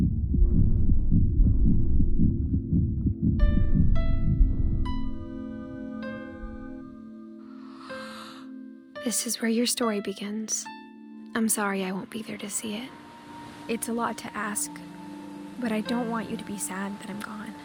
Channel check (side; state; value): both; identical; correlation 1.00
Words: This is where your story begins. I'm sorry I won't be there to see it. It's a lot to ask, but I don't want you to be sad that I'm gone.